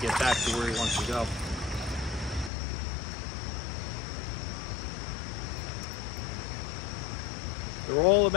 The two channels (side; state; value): right; drops out; at 2.5 s